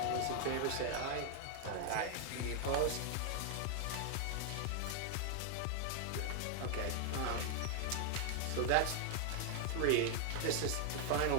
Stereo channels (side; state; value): both; different; correlation 0.00